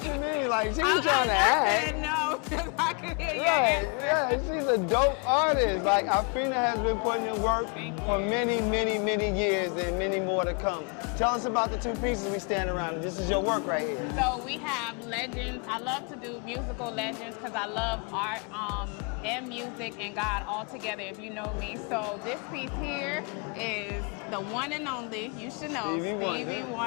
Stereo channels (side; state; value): right; quieter; 35.7 dB